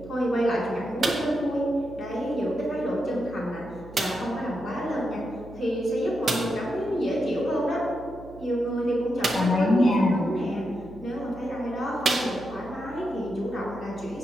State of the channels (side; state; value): right; noise; hum, 18 dB below the sound